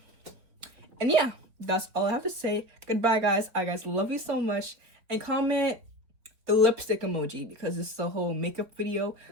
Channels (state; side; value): late; left; 4.1 ms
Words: yeah, that's all I have to say. Goodbye, guys. I guys love you so much. And comment the lipstick emoji, because this is a whole makeup video.